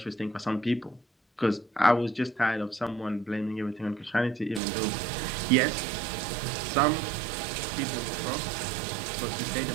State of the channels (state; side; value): drops out; left; at 4.6 s